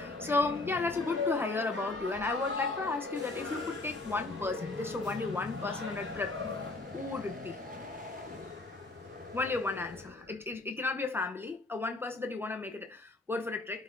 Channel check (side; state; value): right; quieter; 3.2 dB